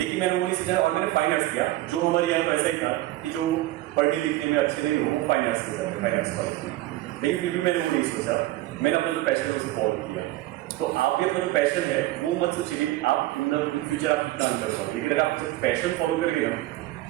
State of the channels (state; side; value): quieter; left; 17.0 dB